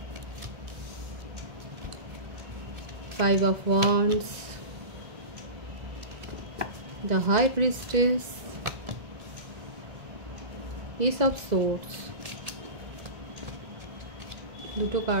5 of Wands, the High Priestess, Ace of Swords, দুটো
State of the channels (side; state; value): left; late; 2.0 ms